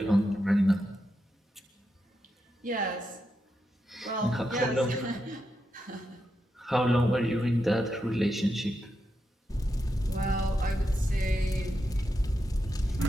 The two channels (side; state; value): both; normal; correlation 0.86